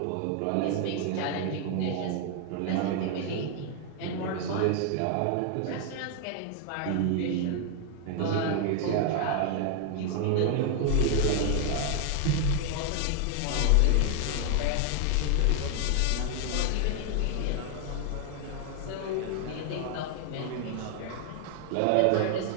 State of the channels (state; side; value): different; both; correlation 0.00